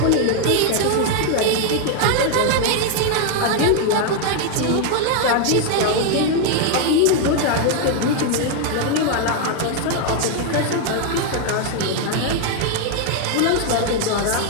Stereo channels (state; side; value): different; both; correlation 0.01